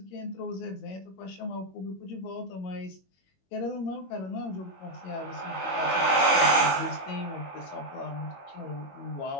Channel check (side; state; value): right; late; 21 ms